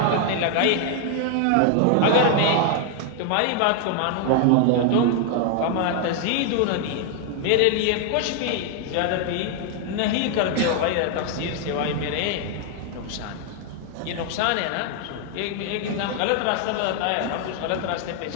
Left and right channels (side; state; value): both; different; correlation 0.00